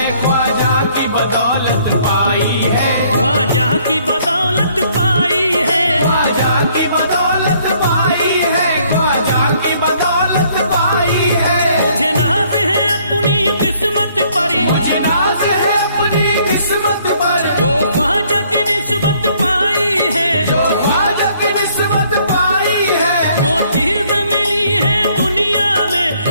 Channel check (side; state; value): both; inverted; correlation -0.64